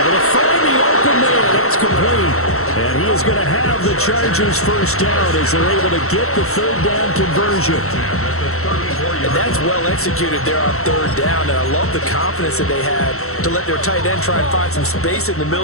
to find the open man. That's complete. And he is going to have the Chargers first down as they're able to get the 3rd down conversion. And that's well executed there on 3rd down, and I love the confidence that they had to let their tight end try and find some space in the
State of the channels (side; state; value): right; late; 0.63 ms